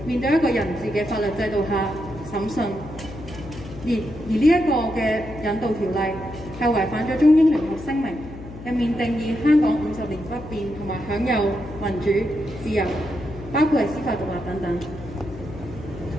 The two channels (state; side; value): noise; left; hum, 14 dB below the sound